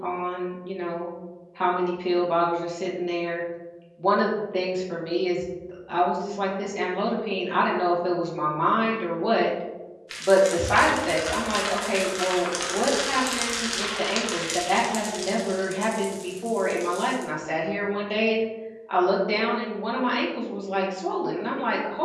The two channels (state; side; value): identical; both; correlation 1.00